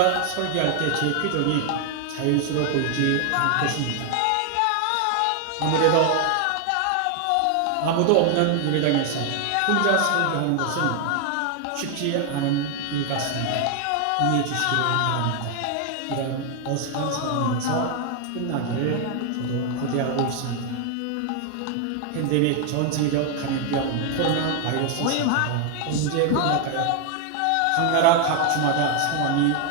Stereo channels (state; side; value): different; both; correlation 0.00